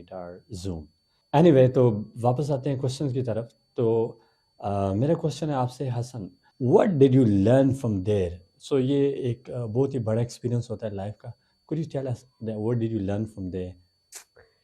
or Zoom. Anyway, तो वापस आते हैं questions की तरफ। तो मेरा question है आपसे Hasan, what did you learn from there? So ये एक बहुत ही बड़ा एक्सपीरियंस होता है लाइफ का। Could you tell us that what did you learn from there?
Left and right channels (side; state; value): both; identical; correlation 1.00